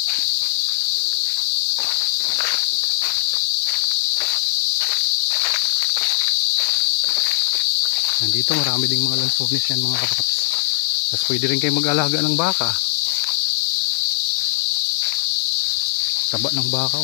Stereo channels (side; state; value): right; silent; digital silence